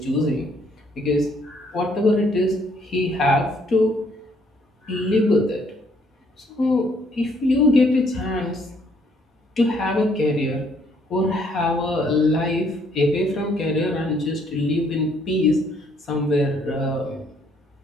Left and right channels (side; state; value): both; normal; correlation 0.67